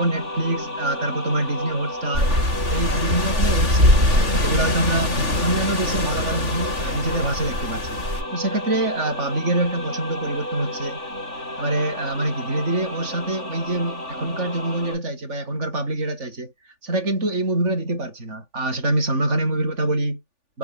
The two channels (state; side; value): late; left; 3.5 ms